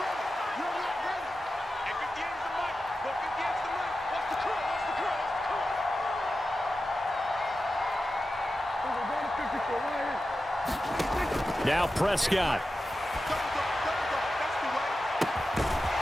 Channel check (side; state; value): both; normal; correlation 0.92